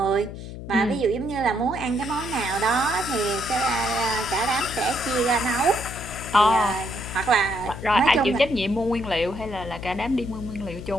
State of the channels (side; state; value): left; noise; hum, 10 dB below the sound